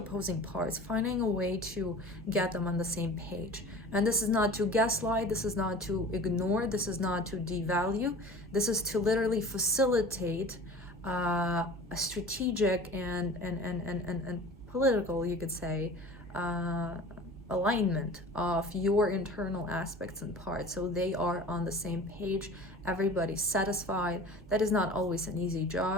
parts, finding a way to get them on the same page. And this is not to gaslight, this is not to ignore, this is not to devalue, this is to literally facilitate a strategic and political, you could say, alignment of your internal aspects and parts, so they are on the same page, everybody's satisfied. That is not always an easy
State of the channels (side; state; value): both; normal; correlation 0.40